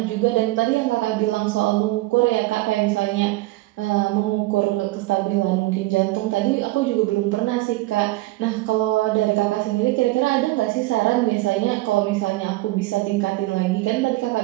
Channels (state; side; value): quieter; left; 19.5 dB